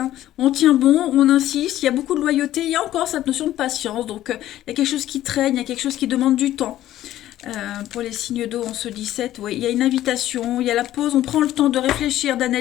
on tient bon, on insiste, il y a beaucoup de loyauté, il y a encore cette notion de patience, donc il y a quelque chose qui traîne, il y a quelque chose qui demande du temps. Pour les signes d'eau en ce 17, oui, il y a une invitation, il y a la pause, on prend le temps de réfléchir,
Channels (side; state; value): right; quieter; 13.5 dB